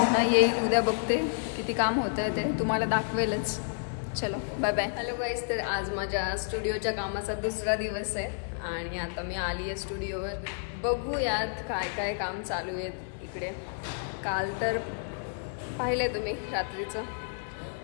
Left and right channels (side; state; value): right; silent; digital silence